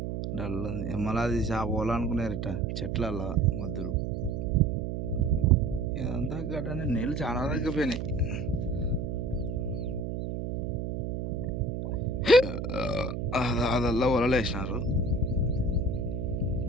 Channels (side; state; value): right; noise; hum, 3 dB below the sound